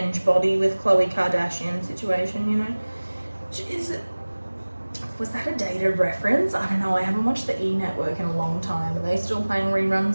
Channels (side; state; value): both; inverted; correlation -1.00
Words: body with Khloe Kardashian situation, Was that a dated reference? I don't know, I haven't watched the E! Network in a long time. Are they still playing